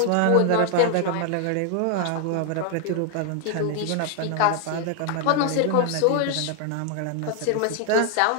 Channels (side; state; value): both; different; correlation 0.00